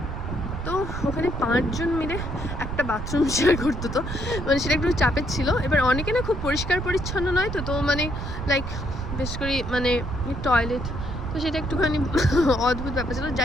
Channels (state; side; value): noise; right; rumble, 6 dB below the sound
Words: তো ওখানে 5 জন মিলে একটা বাথরুম শেয়ার করতো, তো মানে সেটা একটু চাপের ছিল। এবার অনেকে না খুব পরিষ্কার পরিচ্ছন্ন নয়, তো মানে লাইক বেশ করে মানে টয়লেট, তো সেটা একটুখানি অদ্ভুত ব্যাপার ছিল।